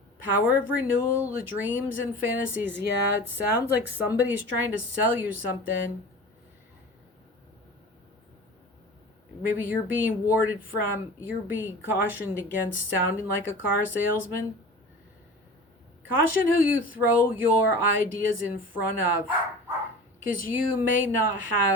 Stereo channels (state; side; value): normal; both; correlation 0.37